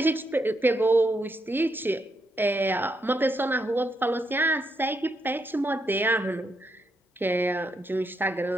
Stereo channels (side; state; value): both; normal; correlation 0.79